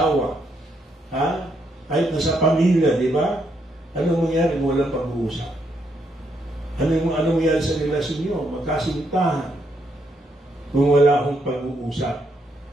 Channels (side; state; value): both; normal; correlation 0.76